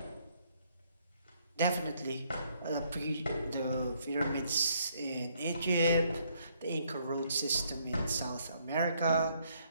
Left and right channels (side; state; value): both; inverted; correlation -0.70